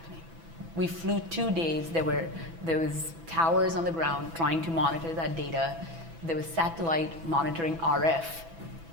We flew 2 days. There was towers on the ground trying to monitor that data. There was satellite monitoring RF.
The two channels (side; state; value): left; late; 6.0 ms